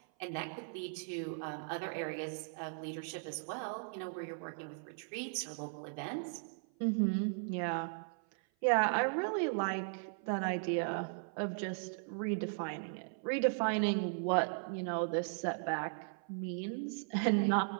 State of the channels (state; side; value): silent; left; 53 dB below the other